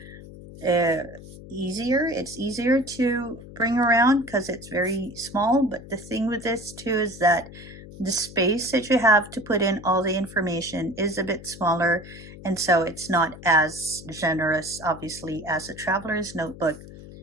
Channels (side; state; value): left; noise; hum, 16 dB below the sound